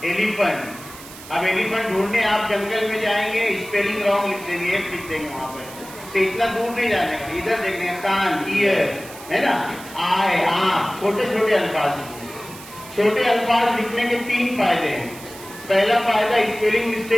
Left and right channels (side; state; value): right; noise; hiss, 16 dB below the sound